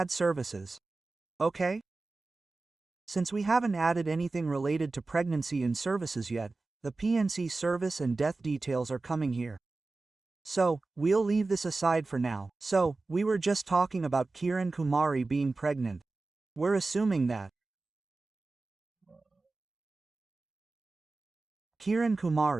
services. Okay? Since we haven't added anything related to pregnancy in services yet, the PNC service and death details are coming here. So, we'll leave this aside for now. So, we were just talking about Kiran Kumari being pregnant. We're assuming that Kiran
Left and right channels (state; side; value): quieter; left; 3.5 dB